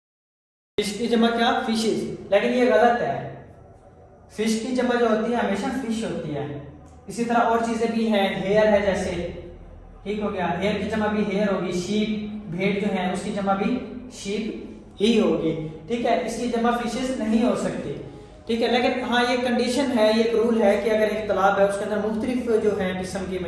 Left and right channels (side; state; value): both; identical; correlation 1.00